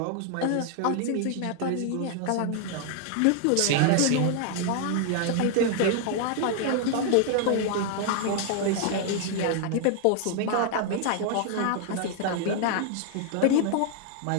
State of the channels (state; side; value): different; both; correlation 0.00